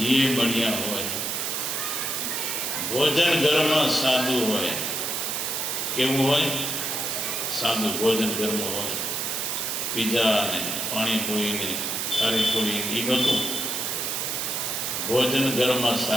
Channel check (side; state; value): right; noise; hiss, 1 dB below the sound